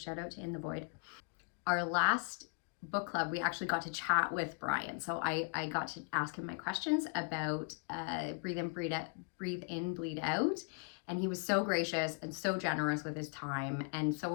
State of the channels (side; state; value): right; quieter; 39.0 dB